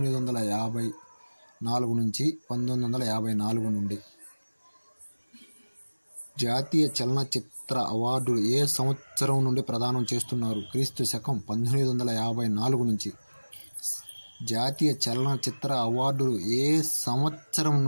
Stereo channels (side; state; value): both; inverted; correlation -1.00